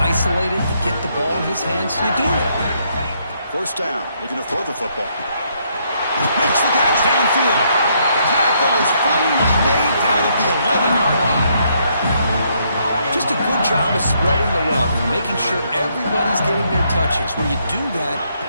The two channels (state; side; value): inverted; both; correlation -0.72